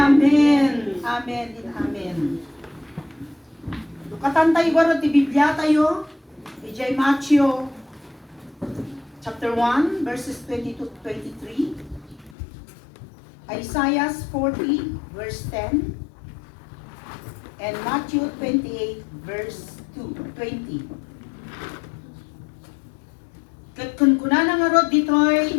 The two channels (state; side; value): drops out; right; at 12.4 s